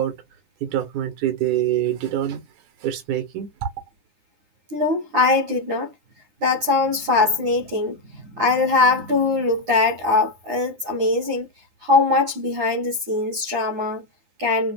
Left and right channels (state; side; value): late; left; 9.8 ms